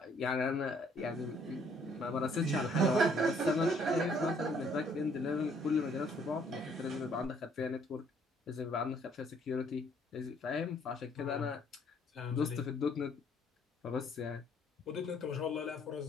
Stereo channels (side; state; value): both; normal; correlation 0.64